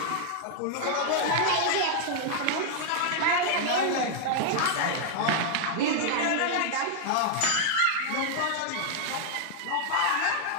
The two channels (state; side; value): different; both; correlation 0.00